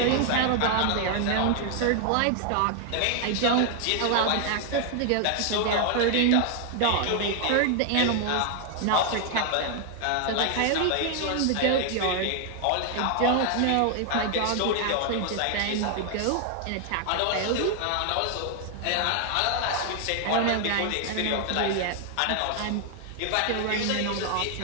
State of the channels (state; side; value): different; both; correlation 0.00